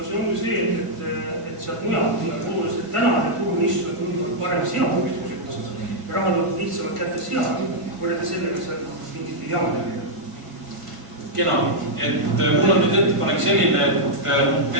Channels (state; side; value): late; left; 1.5 ms